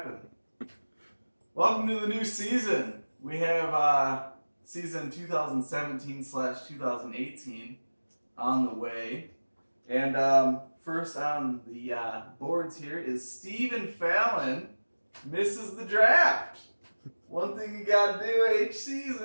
Welcome to the new season. We have season 2017/2018 on the way. And first on the boards here is Stephen Fallon misses the draft. One thing you got to do each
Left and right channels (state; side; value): inverted; both; correlation -1.00